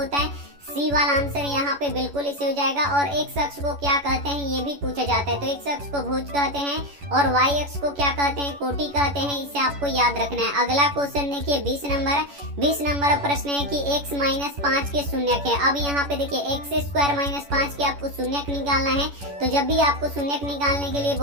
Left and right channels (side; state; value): left; late; 11 ms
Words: है। सी वाला आंसर यहाँ पे बिल्कुल इसे हो जाएगा। और x अक्ष को क्या कहते हैं ये भी पूछा जाता है, तो x अक्ष को भुज कहते हैं और y अक्ष को क्या कहते हैं? कोटि कहते हैं। इसे आपको याद रखना है। अगला क्वेश्चन देखिए 20 नंबर प्रश्न है कि x - 5 के शून्यक है। अब यहाँ पे देखिए x² - 5 के आपको शून्यक निकालना है। तो जब भी आपको शून्यक निकालने के लिए